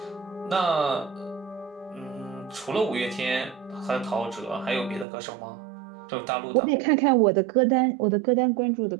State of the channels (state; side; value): drops out; left; at 5.1 s